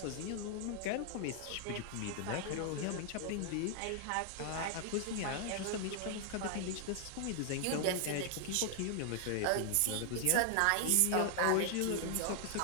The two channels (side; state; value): both; different; correlation 0.00